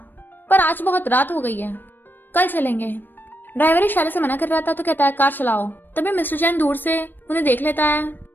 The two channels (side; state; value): right; late; 0.093 ms